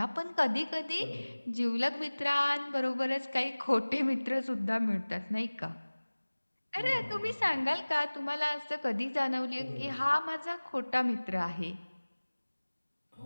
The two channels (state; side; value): inverted; both; correlation -1.00